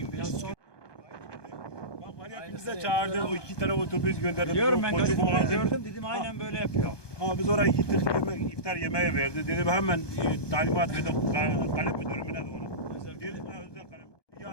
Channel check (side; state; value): right; late; 1.2 ms